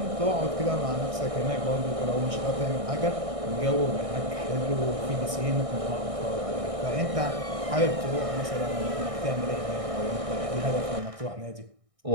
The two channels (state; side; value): late; left; 1.6 ms